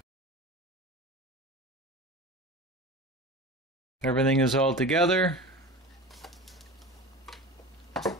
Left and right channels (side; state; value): both; normal; correlation 0.32